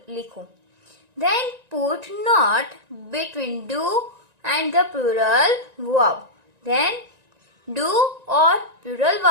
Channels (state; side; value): late; left; 1.9 ms